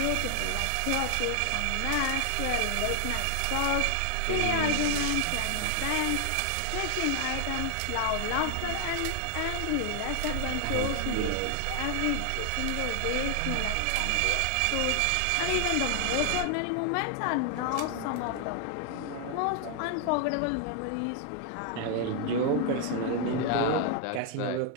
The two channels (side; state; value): both; different; correlation 0.00